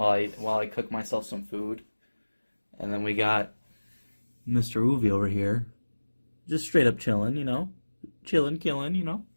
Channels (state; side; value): inverted; both; correlation -1.00